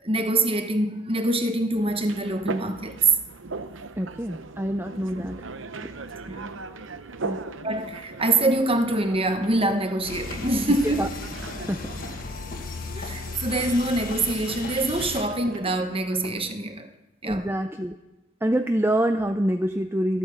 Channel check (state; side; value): normal; both; correlation 0.64